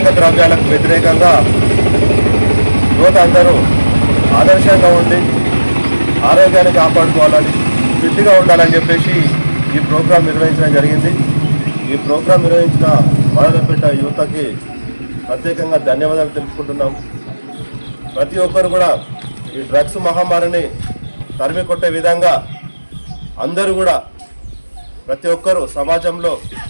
ద్రవ్యాలకు వ్యతిరేకంగా యువత అందరూ ఆదర్శంగా ఉండి ఆరోగ్యాన్ని కాపాడుకోవాలని, ఫిట్గా ఉండాలని చెప్పేసి ఈ ప్రోగ్రాం నిర్వహించడం జరిగింది. ఈ ప్రోగ్రాం నిర్వహించిన మాదన్నపేట యువతకి ప్రత్యేకంగా ధన్యవాదాలు తెలుపుకుంటున్నాం. ప్రతి ఒక్కరు కూడా ఈ డ్రగ్స్ మహమ్మారిని తరిమి కొట్టే విధంగా అందరూ కూడా ప్రతి ఒక్కరూ సమాజంలో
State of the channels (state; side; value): inverted; both; correlation -1.00